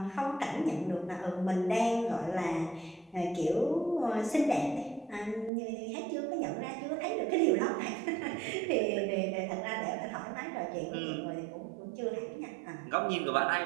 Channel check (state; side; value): drops out; left; at 5.5 s